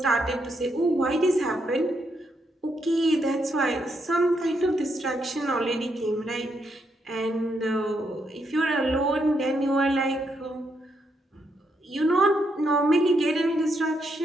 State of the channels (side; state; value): both; normal; correlation 0.78